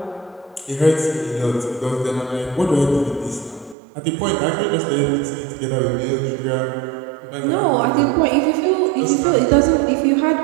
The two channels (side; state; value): left; drops out; at 3.8 s